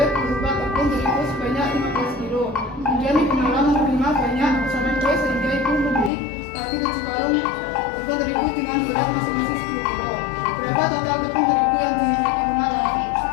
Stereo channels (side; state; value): right; drops out; at 6.1 s